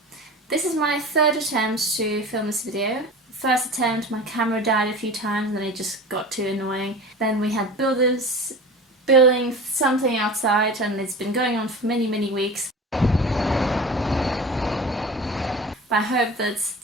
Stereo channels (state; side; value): normal; both; correlation 0.35